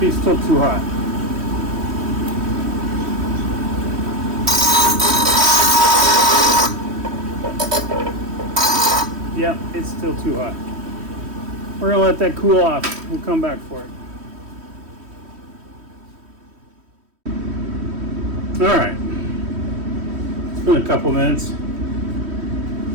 still too hot. Yeah, it's still too hot. We're gonna let that cool off. We'll come back for it. Alright. It's been a couple minutes.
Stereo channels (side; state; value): left; late; 3.1 ms